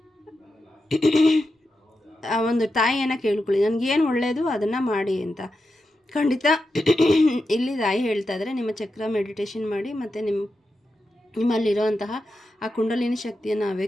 ಒಂದು ತಾಯಿಯನ್ನು ಕೇಳ್ಕೊಳ್ಳಿ, ನನಗೇನು ಒಳ್ಳೆಯದು ಅದನ್ನು ಮಾಡಿ ಅಂತ. ಖಂಡಿತ ಇಲ್ಲಿ ತಾಯಿ ಹೇಳ್ತಾ ಇದ್ದಾರೆ, ನಿಮ್ಮ ಚಕ್ರ ಮೆಡಿಟೇಷನ್ ಮಾಡಿ ಮತ್ತು ನಿಮ್ಮಲ್ಲಿರೋಂತಹ ಆ ಕುಂಡಲಿನಿ ಶಕ್ತಿಯನ್ನು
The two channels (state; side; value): normal; both; correlation 0.89